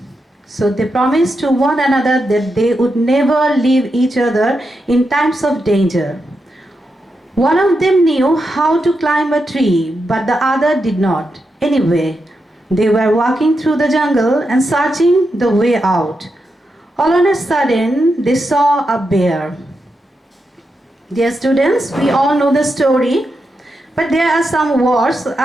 So they promised to one another that they would never leave each other in times of danger. One of them knew how to climb a tree, but the other did not. Anyway, they were walking through the jungle and searching the way out. All on a sudden, they saw a bear. Dear students, we all know the story, but there are some words.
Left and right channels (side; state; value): both; normal; correlation 0.86